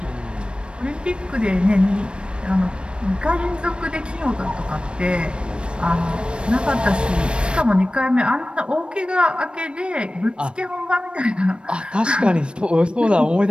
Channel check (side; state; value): left; late; 0.056 ms